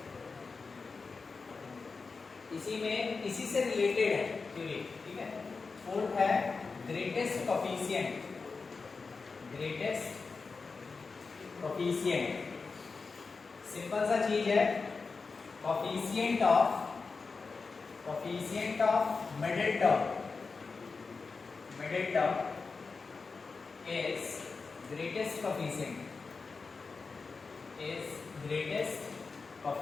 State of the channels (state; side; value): quieter; right; 4.5 dB